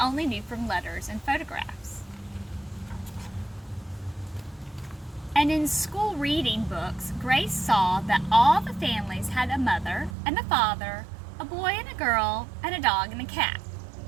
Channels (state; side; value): drops out; left; at 10.1 s